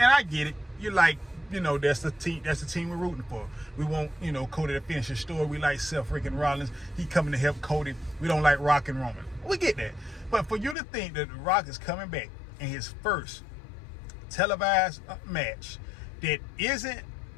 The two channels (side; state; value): right; drops out; at 10.8 s